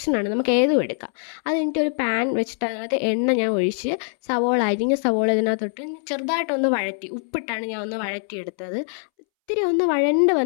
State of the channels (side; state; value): right; silent; 63 dB below the other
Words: നമുക്ക് ഏതും എടുക്കാം. അത് കഴിഞ്ഞിട്ട് ഒരു പാൻ വെച്ചിട്ട് അതിനകത്ത് എണ്ണ ഞാൻ ഒഴിച്ച് അരിഞ്ഞ സവോള ഇതിനകത്തോട്ട് ചെറുതായിട്ടൊന്ന് വഴറ്റി, ഉപ്പിട്ടാണ് ഞാൻ ഒന്ന് വഴറ്റിയെടുത്തത്. ഇത്തിരി ഒന്ന് വഴണ്ട്